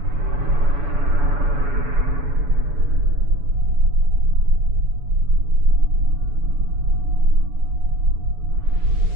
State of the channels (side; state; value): left; late; 7.0 ms